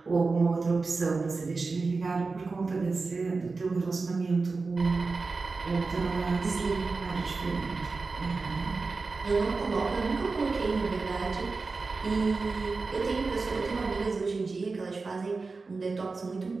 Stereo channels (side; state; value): left; quieter; 4.1 dB